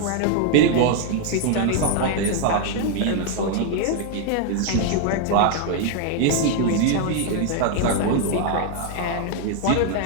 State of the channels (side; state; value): both; different; correlation 0.00